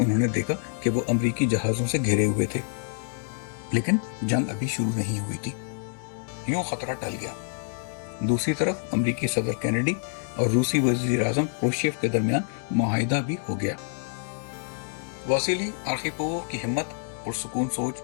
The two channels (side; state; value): right; silent; digital silence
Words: نے دیکھا کہ وہ امریکی جہازوں سے گھرے ہوئے تھے، لیکن جنگ ابھی شروع نہیں ہوئی تھی۔ یوں خطرہ ٹل گیا۔ دوسری طرف امریکی صدر کینیڈی اور روسی وزیر اعظم کروشچیف کے درمیان معاہدہ بھی ہو گیا۔ واسیلی آرخیپووو کی ہمت، پرسکون سوچ